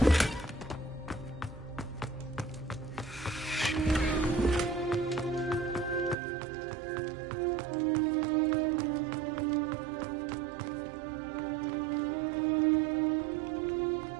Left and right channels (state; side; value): drops out; left; at 6.2 s